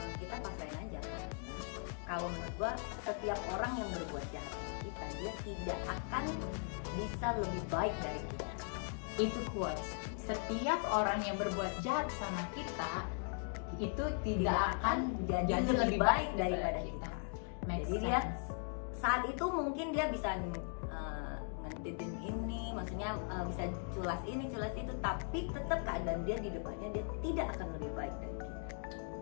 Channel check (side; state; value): right; silent; 52 dB below the other